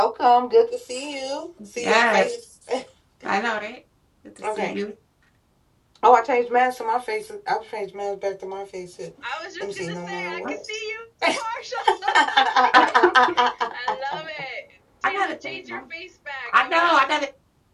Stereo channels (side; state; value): both; identical; correlation 1.00